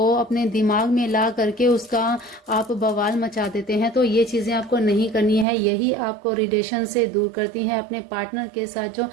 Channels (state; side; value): drops out; left; at 5.5 s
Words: अपने दिमाग में ला करके उसका आप बवाल मचा देते हैं। तो ये चीजें आपको नहीं करनी है, यही आपको रिलेशन से दूर करती है। अपने पार्टनर के साथ जो